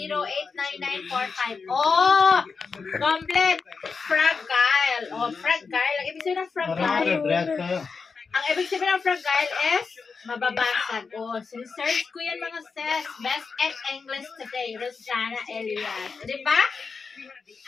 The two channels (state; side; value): quieter; right; 5.0 dB